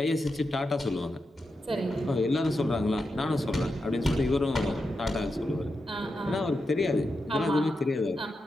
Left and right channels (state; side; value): normal; both; correlation 0.88